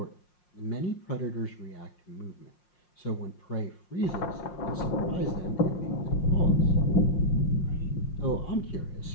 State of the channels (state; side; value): late; right; 5.6 ms